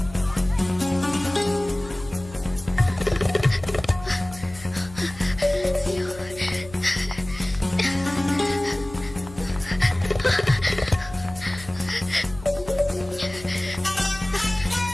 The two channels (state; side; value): noise; left; hum, 17 dB below the sound